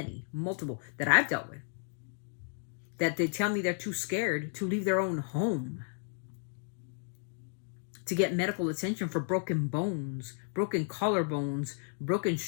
multiple that I've dealt with. That they tell me they're too scared to leave their own home to get medical attention for broken bones, broken collarbones, broken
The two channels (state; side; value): silent; right; 56 dB below the other